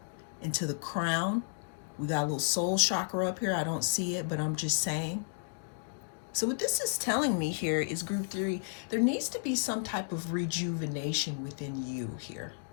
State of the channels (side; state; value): right; silent; digital silence